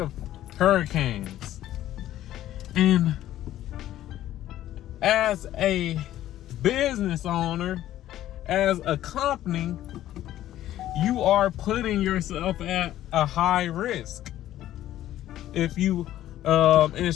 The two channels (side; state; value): right; quieter; 13.2 dB